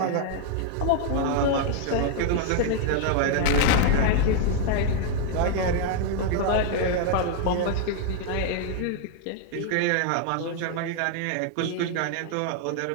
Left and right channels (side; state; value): both; different; correlation 0.00